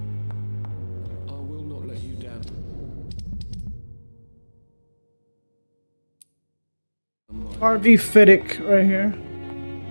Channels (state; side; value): inverted; both; correlation -1.00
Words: I will not let you down. RV Fiddick right here.